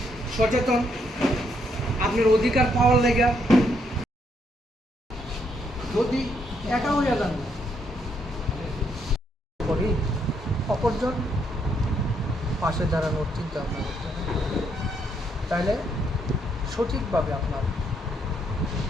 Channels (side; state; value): both; normal; correlation 0.74